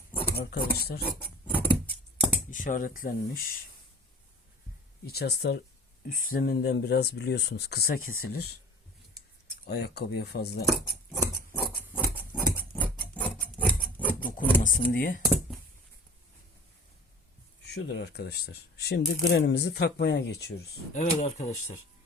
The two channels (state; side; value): normal; both; correlation 0.43